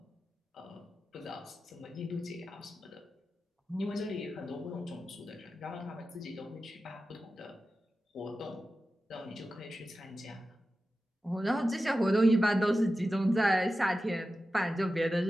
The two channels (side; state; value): both; normal; correlation 0.93